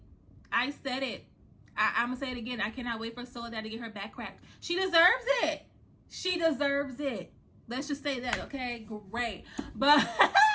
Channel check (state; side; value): identical; both; correlation 1.00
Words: I'm gonna say it again. I cannot wait for Soledad to get her back cracked. She deserves it. Let's just say that, okay? Great. But